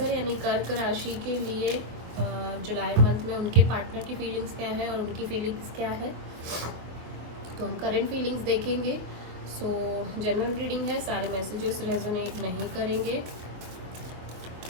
यानी कर्क राशि के लिए जुलाई मंथ में उनके पार्टनर की फीलिंग्स क्या है और उनकी फीलिंग्स क्या है। तो हम करंट फीलिंग्स देखेंगे। सो जनरल रीडिंग है, सारे मैसेजेस रेजोनेट नहीं करेंगे।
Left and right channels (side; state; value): left; late; 24 ms